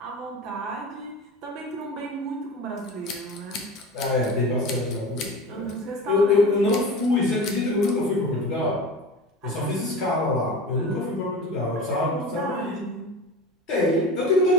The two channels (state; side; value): normal; both; correlation 0.33